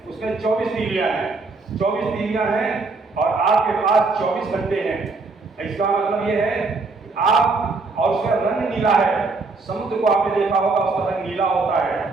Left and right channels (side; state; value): left; quieter; 3.8 dB